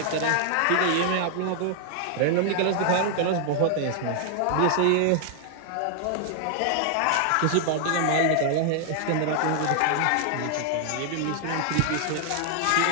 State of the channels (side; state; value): both; different; correlation 0.00